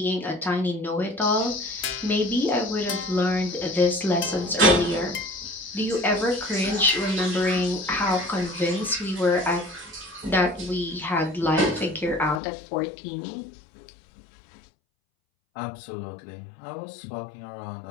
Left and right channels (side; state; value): right; drops out; at 12.4 s